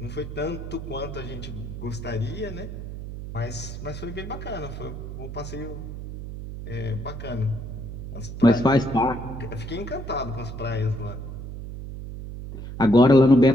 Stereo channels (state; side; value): noise; right; hum, 8 dB below the sound